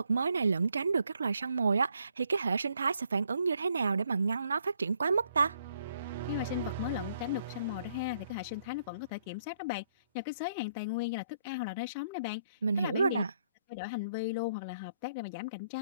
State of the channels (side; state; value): both; inverted; correlation -0.70